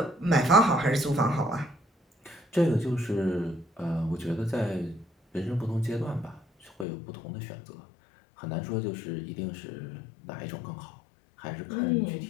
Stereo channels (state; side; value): drops out; right; at 6.9 s